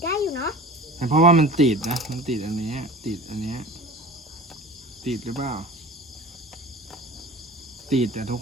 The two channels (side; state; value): both; normal; correlation 0.38